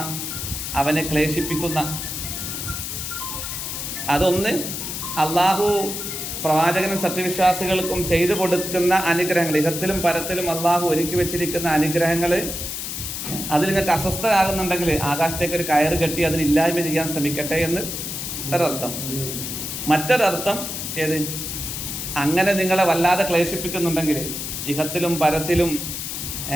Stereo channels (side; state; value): left; noise; hiss, 5 dB below the sound